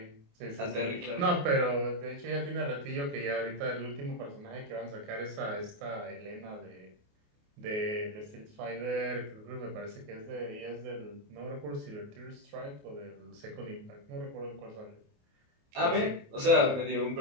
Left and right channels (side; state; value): left; late; 28 ms